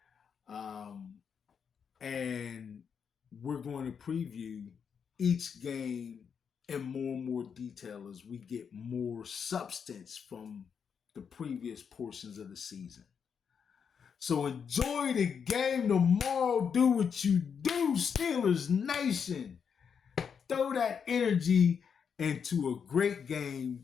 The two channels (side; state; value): right; quieter; 6.8 dB